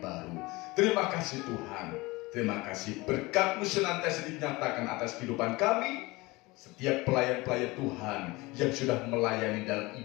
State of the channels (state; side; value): quieter; right; 22.4 dB